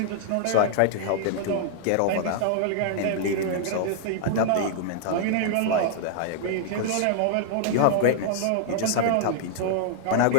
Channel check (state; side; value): different; both; correlation -0.01